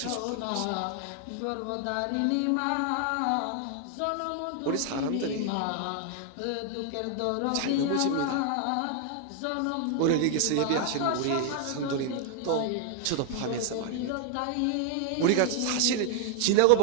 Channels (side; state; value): both; different; correlation 0.00